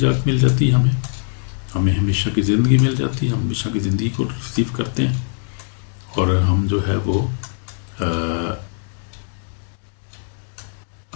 مل جاتی ہے، ہمیں ہمیشہ کی زندگی مل جاتی ہے، ہم ہمیشہ کی زندگی کو ریسیو کرتے ہیں، اور ہم جو ہے وہ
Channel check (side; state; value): right; silent; 65 dB below the other